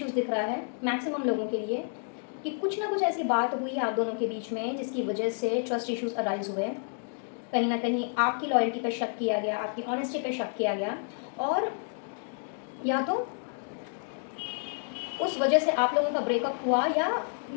दिख रहा है मैक्सिमम लोगों के लिए, कि कुछ ना कुछ ऐसी बात हुई आप दोनों के बीच में जिसकी वजह से ट्रस्ट इश्यूज अराइज हुए। कहीं ना कहीं आपकी लॉयल्टी पे शक किया गया, आपकी ऑनेस्टी पे शक किया गया, और या तो उस वजह से आप लोगों का ब्रेकअप हुआ, या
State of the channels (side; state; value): right; silent; 58 dB below the other